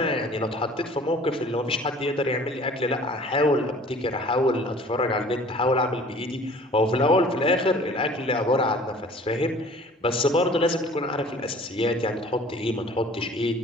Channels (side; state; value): both; normal; correlation 0.49